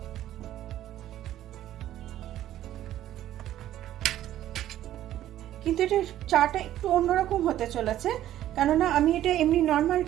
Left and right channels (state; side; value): quieter; left; 12.7 dB